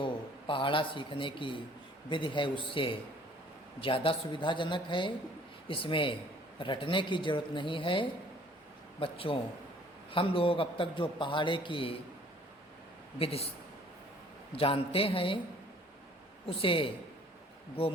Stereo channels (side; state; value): both; normal; correlation 0.55